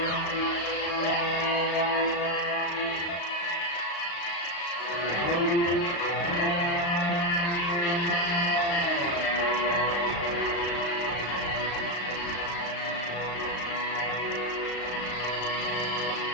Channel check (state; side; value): late; right; 35 ms